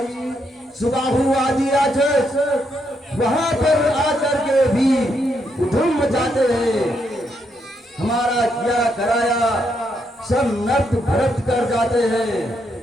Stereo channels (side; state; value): both; normal; correlation 0.78